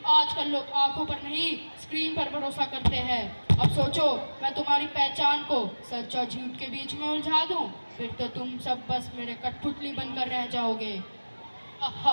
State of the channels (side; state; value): both; inverted; correlation -1.00